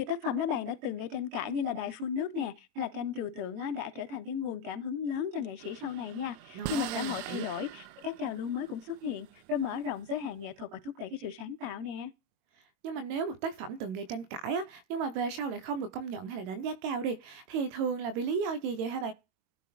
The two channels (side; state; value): left; late; 22 ms